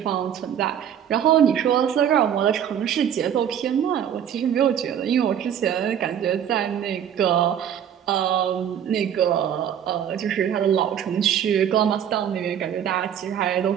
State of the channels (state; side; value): quieter; left; 9.3 dB